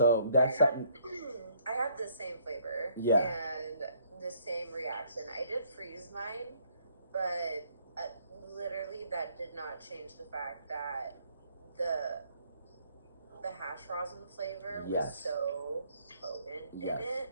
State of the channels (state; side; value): inverted; both; correlation -0.65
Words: that's something. I have the same flavor. Yeah. And the same reaction. I did freeze mine, but literally that did not change the fact that the hash rosin flavor was so potent in